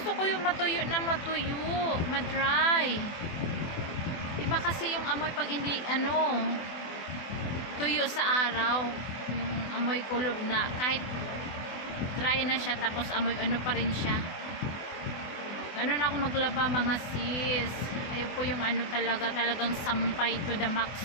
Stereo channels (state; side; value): late; right; 24 ms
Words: ko yung matuyo na matuyo, madry. Iba kasi yung amoy pag hindi, ano, tuyo sa araw. Yung amoy kulob na, kahit dry na siya, tapos amoy ano pa rin siya. Ganun ako maglaba, mga sis. Ayaw po yung ano talagang sampay to the